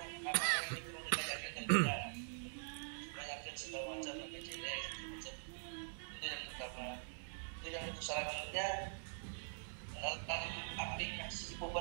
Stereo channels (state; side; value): silent; left; digital silence